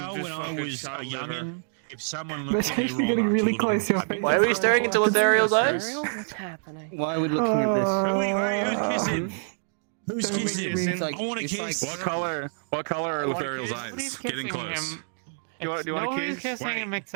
just when I fucking was a child liver. youngin', if someone That's looked at me actually wrong, getting I really told close. them Your to face. Why are we staring into Lothariel's eyes? What's happening? Why are we looking at Who's kissing? Who's kissing? It's like- I want to it's kiss. What color are Lefariel's Nobody's eyes? Getting kissing close. him. Do you want to Nobody's kiss? kissing Wait. him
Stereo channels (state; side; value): silent; left; digital silence